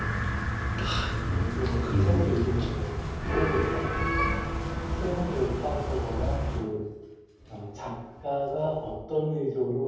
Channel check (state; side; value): identical; both; correlation 1.00